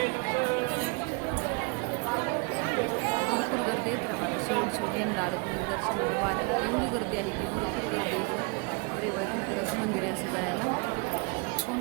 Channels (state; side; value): quieter; left; 30.9 dB